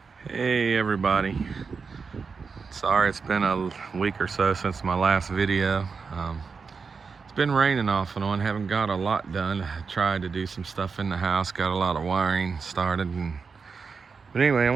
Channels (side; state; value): left; quieter; 5.2 dB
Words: Hey everybody, sorry it's been a week or so since my last video. It's been raining off and on, haven't got a lot done. I tried to do some stuff in the house, got a lot of wiring started, but anyway, I